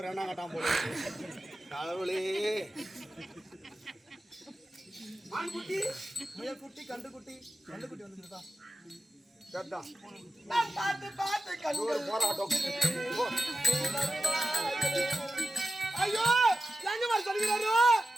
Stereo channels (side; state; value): both; normal; correlation 0.92